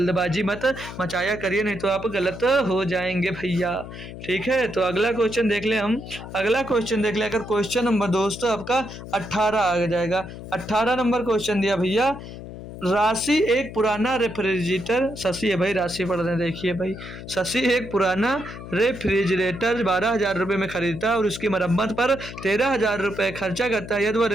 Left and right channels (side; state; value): left; noise; hum, 12 dB below the sound